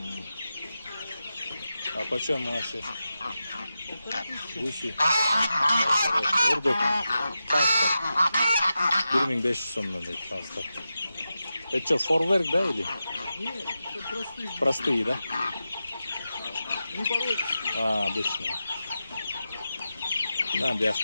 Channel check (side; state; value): both; inverted; correlation -0.91